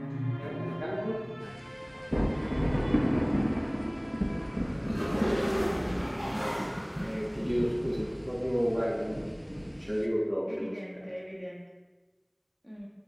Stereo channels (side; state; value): both; identical; correlation 1.00